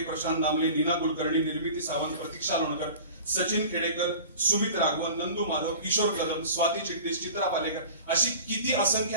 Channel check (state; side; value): inverted; both; correlation -0.39